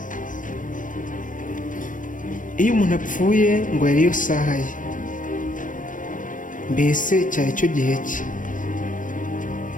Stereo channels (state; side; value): late; right; 0.38 ms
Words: Iyo umuntu apfuye ngo yariyo saha ye, mbese cyari cyo gihe cye.